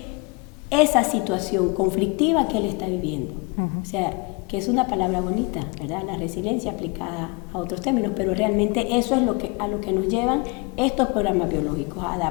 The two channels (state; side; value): quieter; right; 29.4 dB